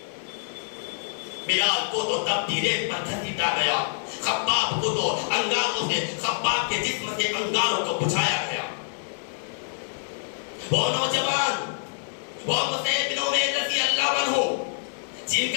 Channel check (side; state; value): right; silent; digital silence